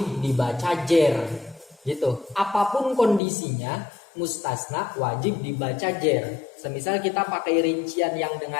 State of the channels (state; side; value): drops out; right; at 3.2 s